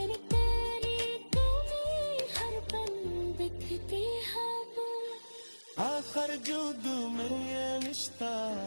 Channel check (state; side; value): inverted; both; correlation -1.00